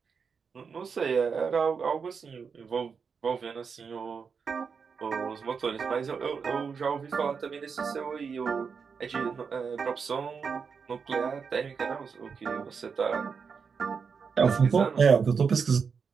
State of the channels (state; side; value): quieter; left; 5.8 dB